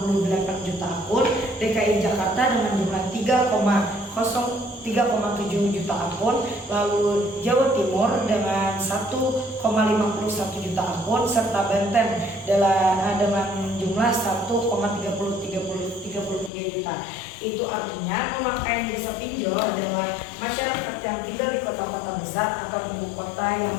juta akun, DKI Jakarta dengan jumlah 3,7 juta akun, lalu Jawa Timur dengan 1,51 juta akun, serta Banten dengan jumlah 1,33 juta. Itu artinya pemakaian jasa pinjol adalah masyarakat yang tinggal di kota-kota besar atau ibu kota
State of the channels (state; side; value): drops out; right; at 16.5 s